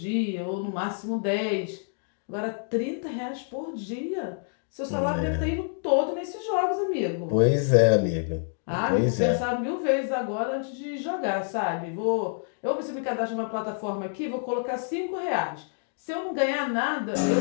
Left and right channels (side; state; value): right; silent; digital silence